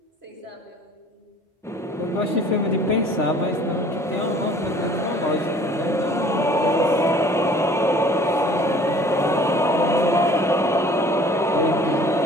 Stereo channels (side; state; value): both; normal; correlation 0.51